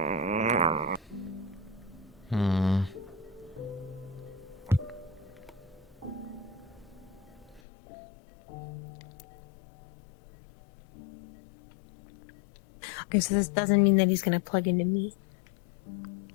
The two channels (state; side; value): drops out; right; at 7.6 s